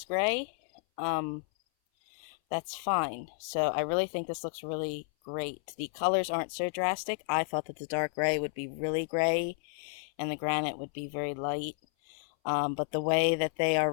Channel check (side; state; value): right; silent; 57 dB below the other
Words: gray. That's fine. So I really think this looks really great. The colors aren't so drastic. I thought that the dark gray would be really gray and the granite would be very light. But the way that they are